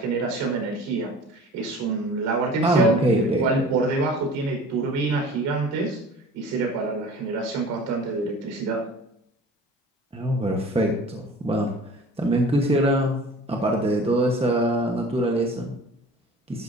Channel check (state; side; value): normal; both; correlation 0.43